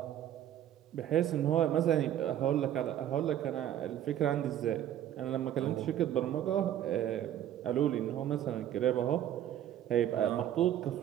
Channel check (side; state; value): left; quieter; 11.3 dB